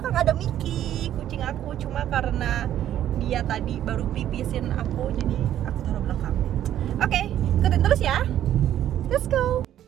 ada Miki, kucing aku. Cuma karena dia tadi baru pipisin aku, jadi aku taruh belakang. Oke, ikutin terus ya. Let's go.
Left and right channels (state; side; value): quieter; left; 11.5 dB